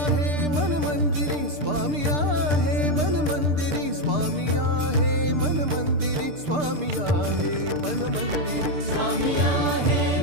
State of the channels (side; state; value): left; late; 6.7 ms